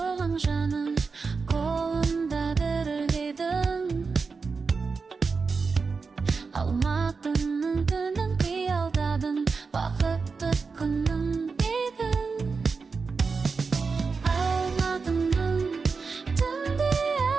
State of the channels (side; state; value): left; quieter; 4.8 dB